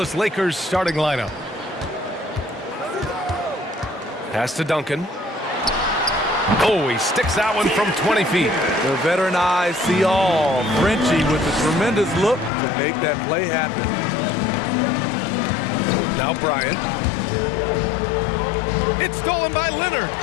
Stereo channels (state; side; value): drops out; right; at 12.5 s